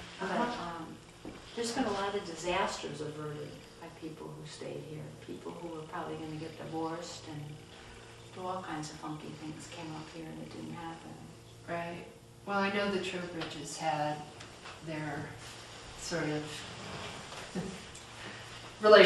But there's been a lot of disasters averted by people who stayed here. People who were probably going to get divorced and do all kinds of funky things came up here and it didn't happen. Right. Well, I know the Trowbridges had their sort of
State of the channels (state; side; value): identical; both; correlation 1.00